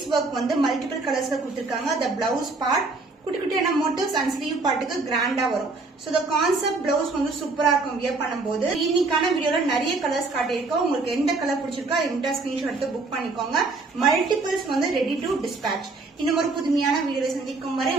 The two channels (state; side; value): quieter; left; 3.6 dB